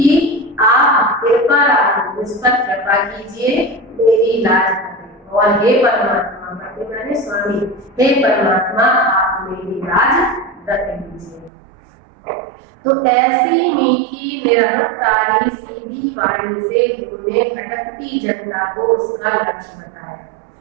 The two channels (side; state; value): left; drops out; at 11.5 s